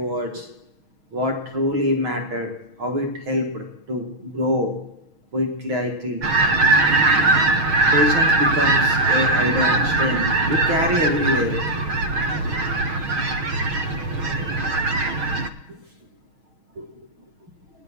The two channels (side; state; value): left; late; 6.3 ms